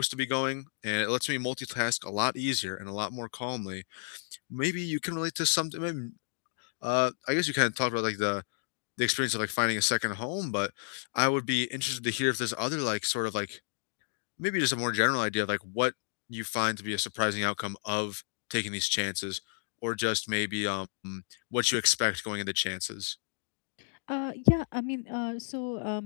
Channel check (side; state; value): right; silent; digital silence